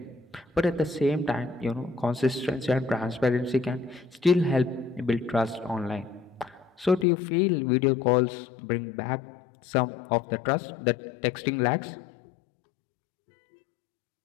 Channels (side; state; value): right; drops out; at 7.1 s